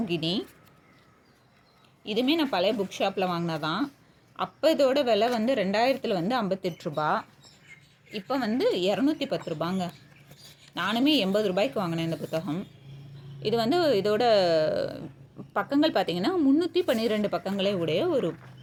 இதுவுமே நான் பழைய புக் ஷாப்பில் வாங்கினதான். அப்போ இதோட விலை வந்து 2000 வந்து 58 ரூபா. இப்போ வந்து 210 ரூபாங்க. நானுமே 80 ரூபாய்க்கு வாங்கினேன் இந்த புத்தகம். இது வந்து இதோட பக்கங்கள் பார்த்திங்கன்னா 312 பக்கங்களே உடைய ஒரு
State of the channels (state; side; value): identical; both; correlation 1.00